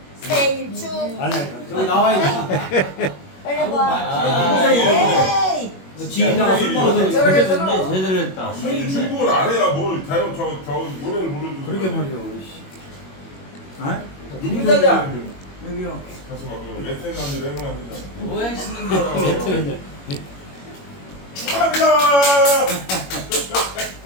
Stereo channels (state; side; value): late; right; 21 ms